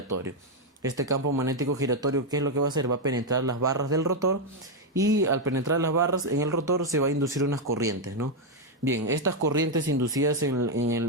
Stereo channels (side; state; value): both; normal; correlation 0.02